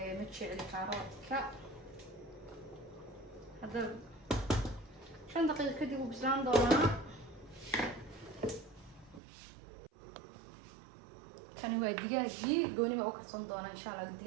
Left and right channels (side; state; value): left; drops out; at 9.2 s